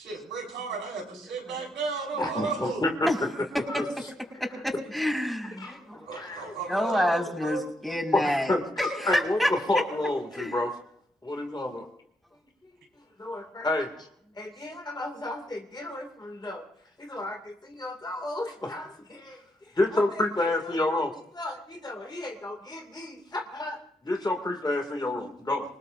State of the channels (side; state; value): both; normal; correlation 0.78